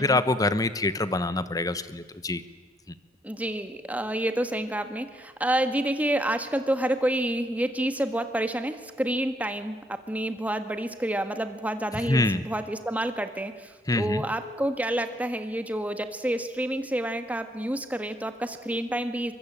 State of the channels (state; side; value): normal; both; correlation 0.70